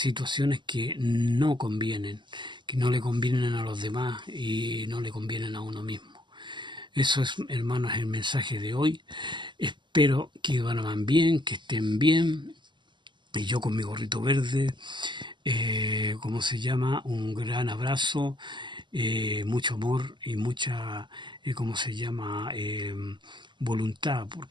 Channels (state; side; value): late; left; 0.22 ms